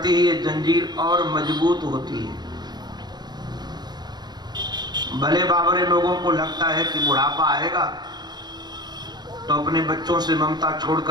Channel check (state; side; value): late; left; 0.20 ms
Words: है, ये जंजीर और मजबूत होती है। भले बाबरे लोगों को लगता है कि बुढ़ापा आएगा तो अपने बच्चों से ममता छोड़